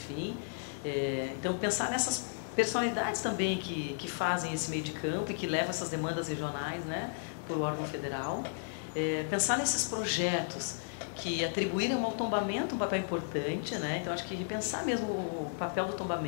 então pensar nessas personalidades também que fazem esse meio de campo e que levam essas demandas regionais, né? Por o órgão federal. Pensar nesses projetos que atribuíram ao tombamento um papel importante, né? Então acho que repensar mesmo o papel do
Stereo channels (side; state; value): right; silent; digital silence